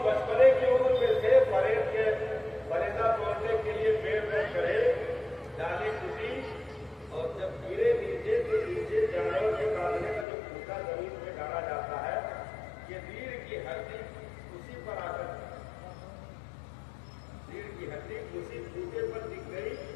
بچپنے کی عمر میں تھے، پریڈ کے فریضہ توڑنے کے لیے پیڑ میں چڑھے، ڈالی ٹوٹی اور جب گرے نیچے تو نیچے جانور کے کاٹنے کا جو پھوٹا زمین میں ڈالا جاتا ہے، یہ ریڑھ کی ہڈی اسی پر آ کر ریڑھ کی ہڈی اسی پھوٹے پر دکھ گئی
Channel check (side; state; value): right; drops out; at 10.2 s